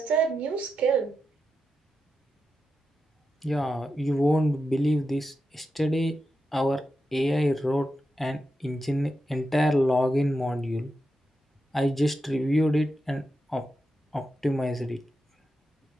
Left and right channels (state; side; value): normal; both; correlation 0.88